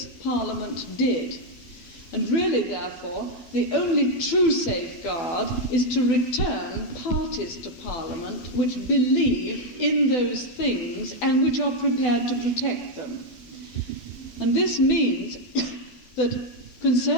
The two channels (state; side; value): late; right; 12 ms